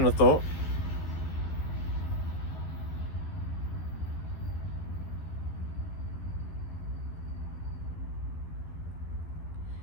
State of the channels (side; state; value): right; late; 13 ms